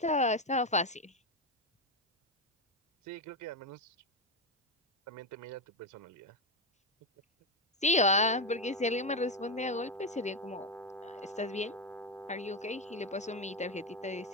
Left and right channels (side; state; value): both; normal; correlation 0.09